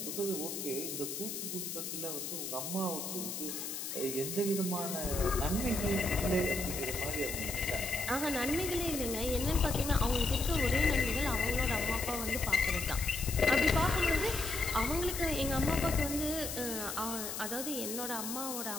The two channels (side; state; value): left; noise; hiss, 5 dB below the sound